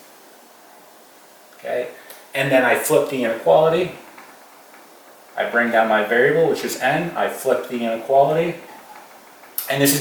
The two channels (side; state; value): both; identical; correlation 1.00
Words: Okay? And then I flip the inequality. I bring down my variable, which is n. I flip the inequality. And this